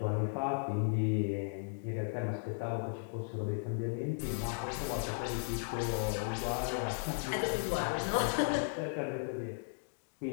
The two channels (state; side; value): silent; right; digital silence